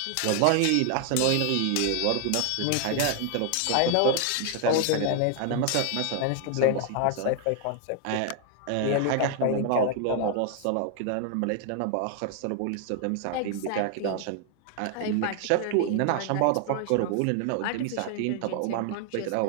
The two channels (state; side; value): different; both; correlation 0.00